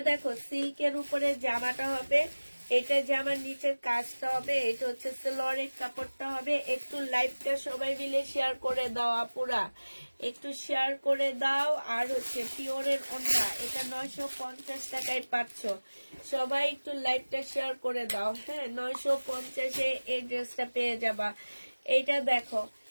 দেখো, সিল্কের উপরে জামাটা হবে। এটা জামার নিচের কাজটা হবে। এটা হচ্ছে সালোয়ারের কাপড়টা হবে। একটু লাইভটা সবাই মিলে শেয়ার করে দাও আপুরা, একটু শেয়ার করে দাও। আর হচ্ছে পিওরের ওড়না, এটা 950 টাকায় পাচ্ছ। সবাই একটু লাইভটা শেয়ার করে দাও। হ্যাঁ, 950-এ এই ড্রেসটা পেয়ে যাবা। এইটা দেখো,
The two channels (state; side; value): inverted; both; correlation -1.00